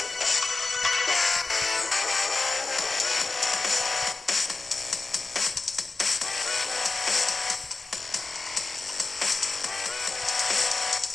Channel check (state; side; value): quieter; right; 3.6 dB